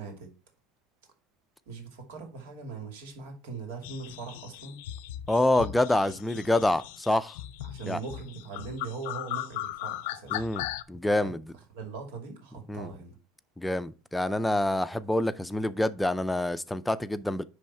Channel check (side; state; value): both; normal; correlation 0.84